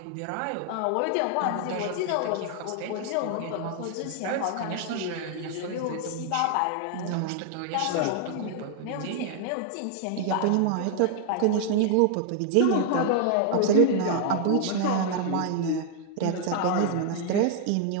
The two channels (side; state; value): both; different; correlation 0.00